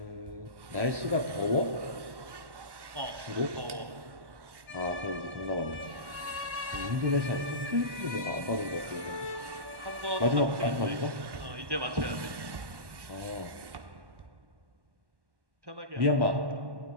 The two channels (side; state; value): left; late; 1.1 ms